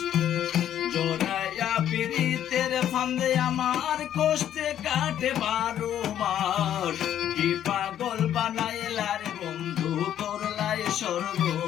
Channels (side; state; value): right; quieter; 10.7 dB